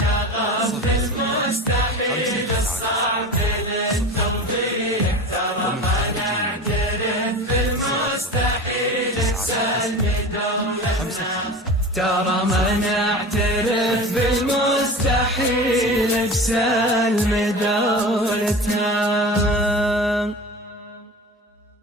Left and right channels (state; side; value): normal; both; correlation 0.32